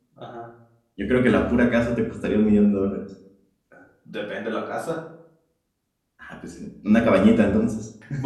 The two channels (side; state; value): both; identical; correlation 1.00